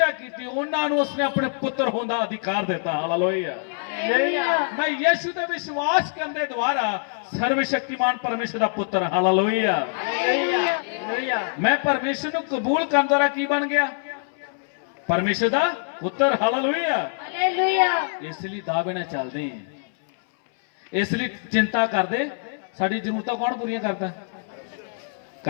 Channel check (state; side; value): silent; right; 62 dB below the other